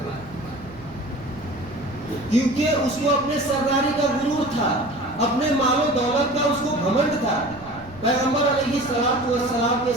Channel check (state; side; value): noise; right; rumble, 19 dB below the sound